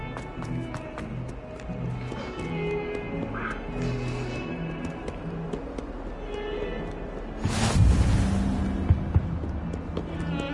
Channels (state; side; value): identical; both; correlation 1.00